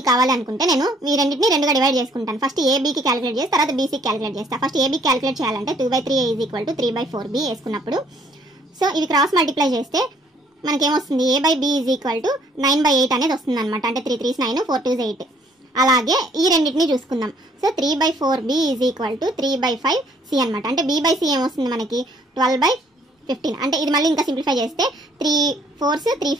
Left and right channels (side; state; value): both; normal; correlation 0.63